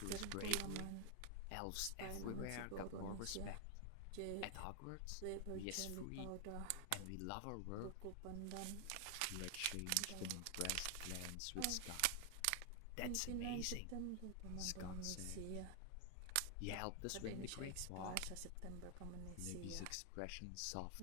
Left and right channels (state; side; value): different; both; correlation 0.00